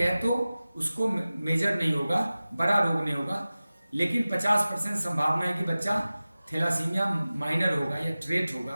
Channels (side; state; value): both; inverted; correlation -0.97